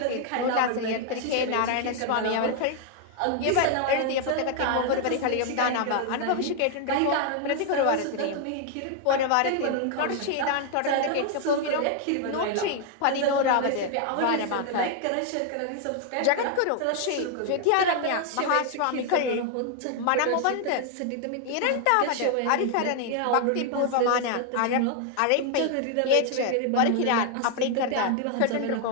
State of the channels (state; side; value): different; both; correlation 0.00